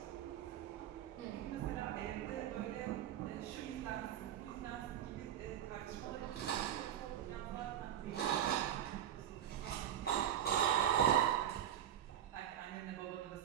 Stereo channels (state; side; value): quieter; left; 10.5 dB